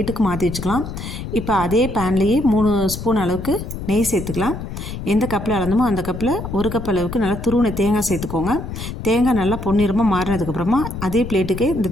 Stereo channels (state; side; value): noise; left; rumble, 8 dB below the sound